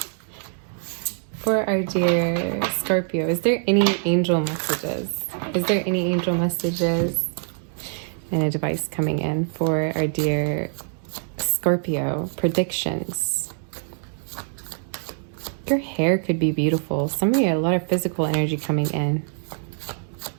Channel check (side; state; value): left; silent; digital silence